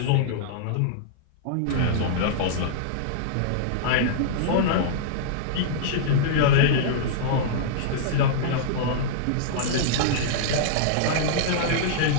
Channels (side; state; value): both; different; correlation -0.02